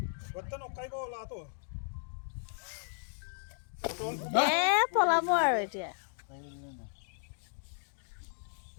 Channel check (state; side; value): silent; right; digital silence